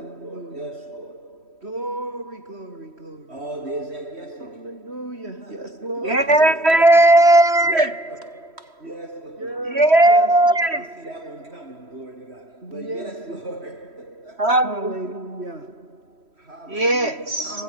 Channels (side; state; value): left; late; 3.1 ms